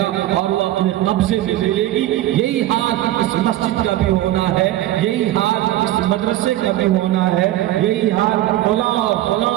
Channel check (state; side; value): quieter; left; 14.6 dB